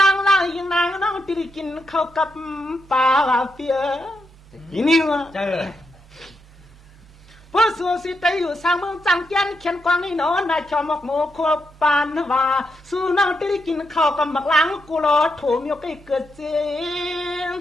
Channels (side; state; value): both; normal; correlation 0.83